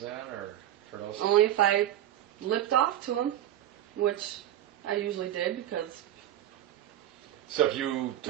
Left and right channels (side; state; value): left; quieter; 12.0 dB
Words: then, or for those? Only if I lipped off to him, which I usually did because... So if you